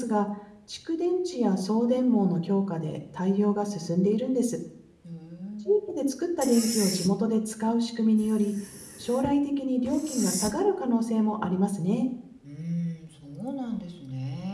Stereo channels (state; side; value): identical; both; correlation 1.00